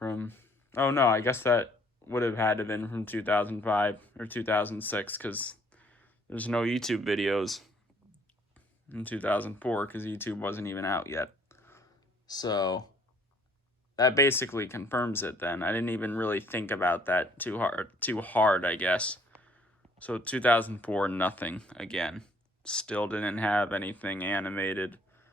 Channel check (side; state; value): both; normal; correlation 0.61